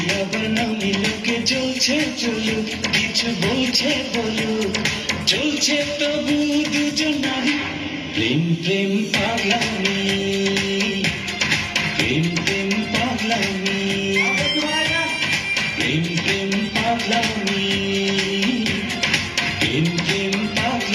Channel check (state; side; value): identical; both; correlation 1.00